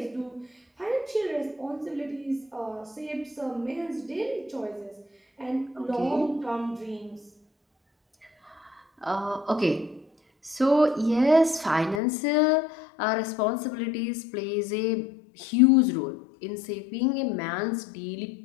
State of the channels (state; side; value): drops out; right; at 12.0 s